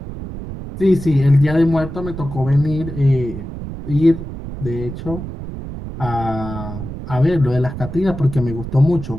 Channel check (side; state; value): right; noise; rumble, 9 dB below the sound